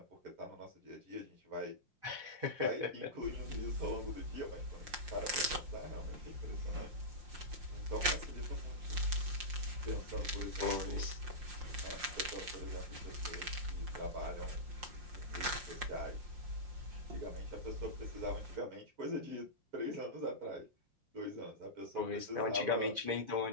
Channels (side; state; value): left; late; 5.6 ms